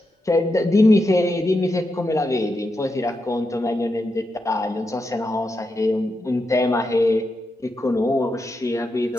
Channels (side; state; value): both; normal; correlation 0.86